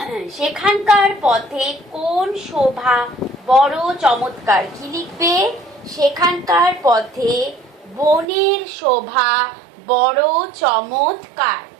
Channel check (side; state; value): left; drops out; at 8.2 s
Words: সেখানকার পথে কোন শোভা বড় চমৎকার কি লিখবে? সেখানকার পথে বনের শোভা বড় চমৎকার।